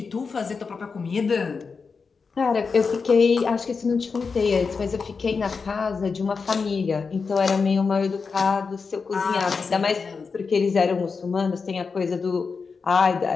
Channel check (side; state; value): right; quieter; 5.0 dB